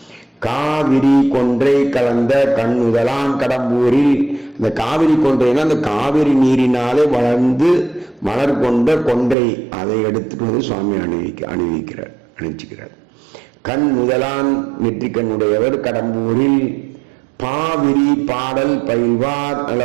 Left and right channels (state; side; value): drops out; left; at 9.3 s